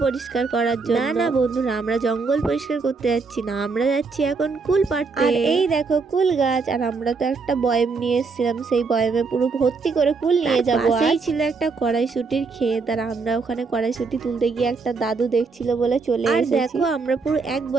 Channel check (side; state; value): left; quieter; 4.5 dB